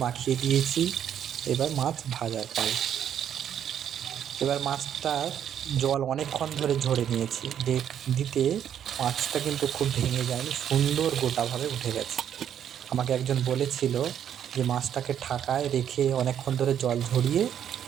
মাখিয়ে দিয়েছি, এবার মাছ ভাজার পাল। এবার মাছটার জল অনেকক্ষণ ধরে ঝরে নিয়েছি, দিতে মাছটা কিন্তু খুব ভেঙে যায়নি, সুন্দর গোটাভাবে উঠে গেছে। আমাকে একজন বলেছিল যে মাছটাকে ঢাকায় রেখে অনেকক্ষণ ধরে জল ঝরিয়ে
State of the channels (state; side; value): quieter; left; 9.5 dB